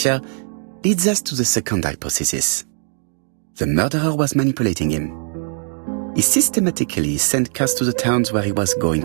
leads us to the second hypothesis. The murderer was manipulating him. He systematically sent Cust to the towns where he was going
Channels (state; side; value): silent; left; 64 dB below the other